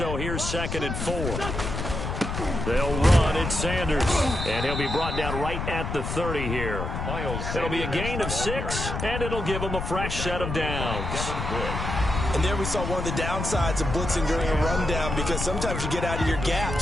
here's 2nd and 4. They'll run. It's Sanders, and he'll be brought down right at the 30 here. It'll be a gain of 6, and it'll give them a fresh set of downs. And there we saw one of the downsides of blitzing during a rundown, because sometimes you get out of your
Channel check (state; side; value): noise; left; rumble, 4 dB below the sound